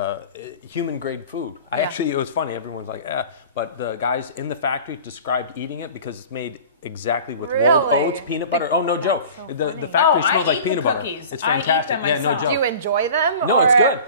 human grade food. It was funny. Everyone's like, but the guys in the factory described eating it because it's made exactly with rolled oats, peanut butter. Oh, no joke. So the factory smells like peanut butter. Cookies. It's fantastic. I eat them myself. No joke. Do you enjoy them? No, it's good.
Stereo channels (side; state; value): both; inverted; correlation -0.41